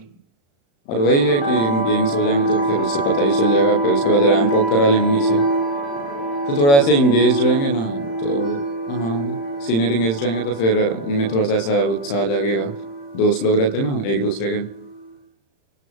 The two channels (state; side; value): late; right; 35 ms